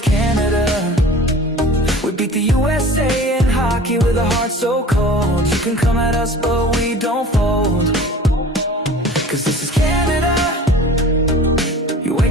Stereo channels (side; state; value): both; normal; correlation 0.43